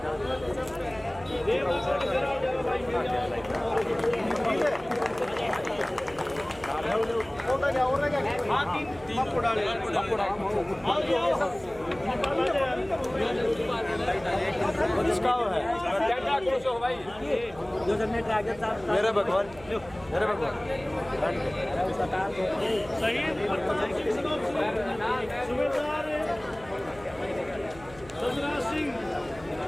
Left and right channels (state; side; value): noise; right; hum, 20 dB below the sound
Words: मेरे भगवान मेरे भगवान सुबेदार सजरा सिंह